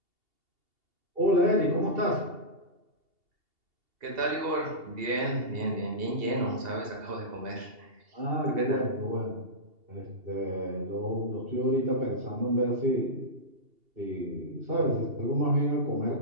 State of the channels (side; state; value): left; late; 2.8 ms